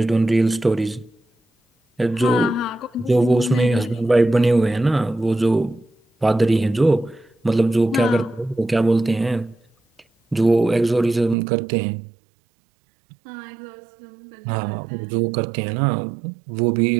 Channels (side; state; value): left; drops out; at 11.4 s